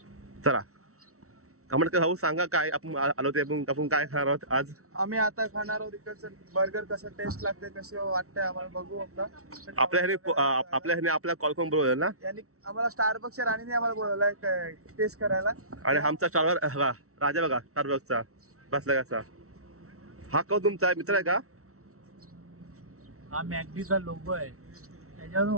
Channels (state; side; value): late; left; 0.64 ms